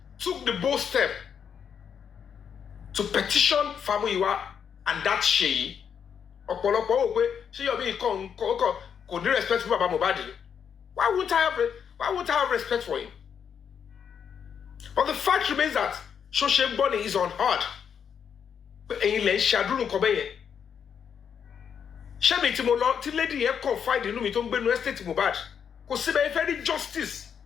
took the bold step to petition Fabiyi and that Sheyi ọ̀pọ̀lọpọ̀ wò pé ṣé Yomi kò ní respect fún baba Mohbad why won't I have respect for him but the fact remains that social bonding is unheard pé ẹ̀yin lẹ ń ṣàdúró nǹkan bẹ́ẹ̀ yẹn ṣé mi tí mo lọ tí lady yẹn confide inú mi tó ń gbénu estate Mohbad kò síbẹ̀ ẹ fẹ́ rí justice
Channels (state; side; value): quieter; right; 7.6 dB